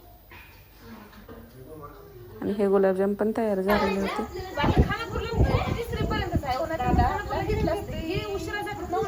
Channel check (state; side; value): identical; both; correlation 1.00